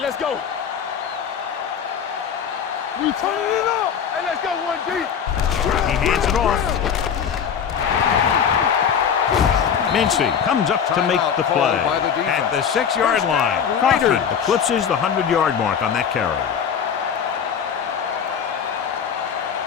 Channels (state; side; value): quieter; right; 7.6 dB